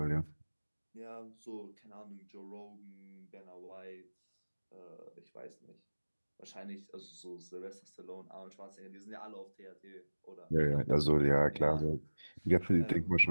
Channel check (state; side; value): inverted; both; correlation -1.00